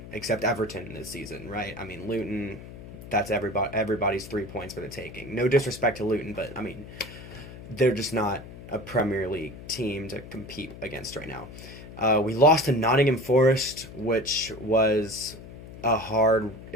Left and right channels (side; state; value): left; noise; hum, 14 dB below the sound